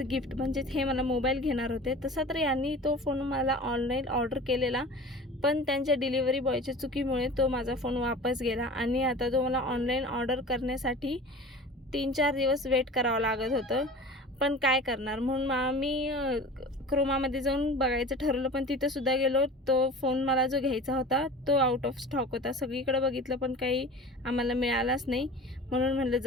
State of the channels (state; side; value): normal; both; correlation 0.39